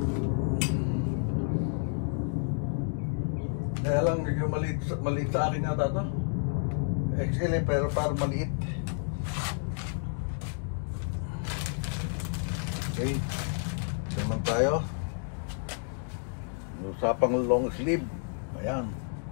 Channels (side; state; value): right; silent; 58 dB below the other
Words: Kaya lang, maliit sa akin yata ito. XL pero parang maliit. Okay. Naman tayo. Usapang long sleeve. Ayan.